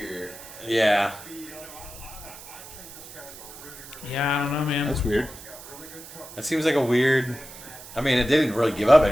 Yeah. Yeah, I don't know, man. That's weird. That seems like a weird. I mean, it didn't really give up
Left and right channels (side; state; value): right; noise; hiss, 16 dB below the sound